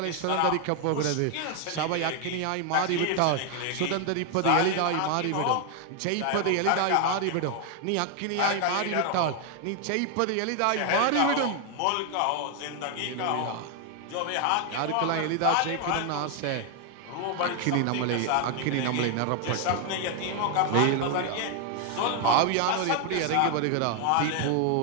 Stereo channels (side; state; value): both; different; correlation 0.00